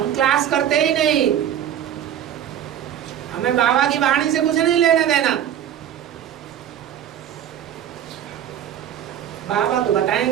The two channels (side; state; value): left; quieter; 10.3 dB